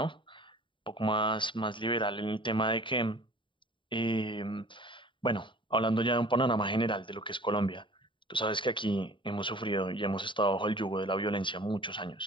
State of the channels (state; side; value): late; right; 0.24 ms